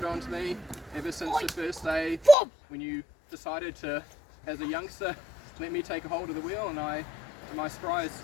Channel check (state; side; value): drops out; right; at 2.4 s